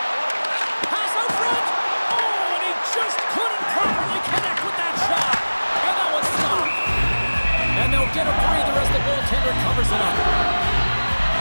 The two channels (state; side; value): inverted; both; correlation -1.00